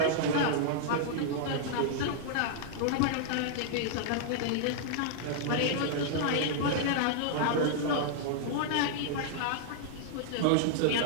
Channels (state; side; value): different; both; correlation -0.01